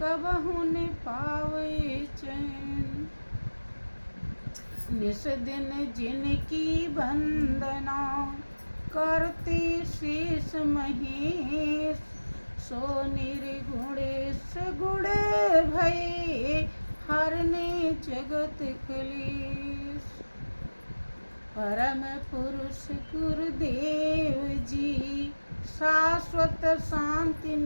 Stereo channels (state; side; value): inverted; both; correlation -1.00